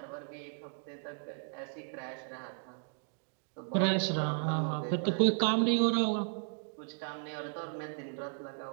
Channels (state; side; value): silent; left; 55 dB below the other